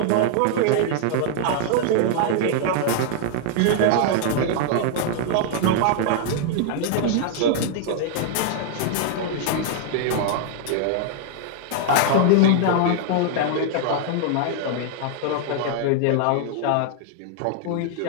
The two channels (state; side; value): different; both; correlation 0.00